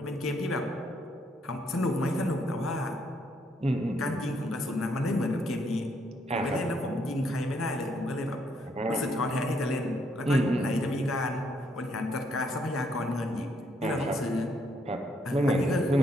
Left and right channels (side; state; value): both; normal; correlation 0.72